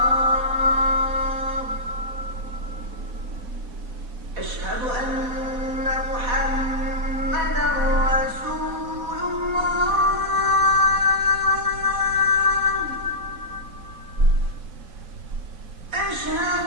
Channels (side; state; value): left; late; 4.0 ms